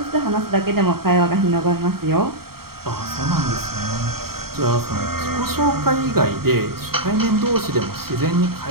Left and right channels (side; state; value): left; late; 0.94 ms